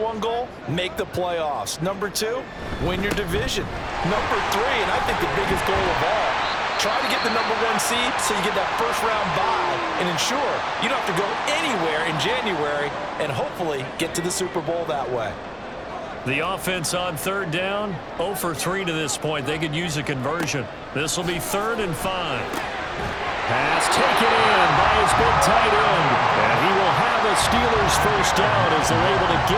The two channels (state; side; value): identical; both; correlation 1.00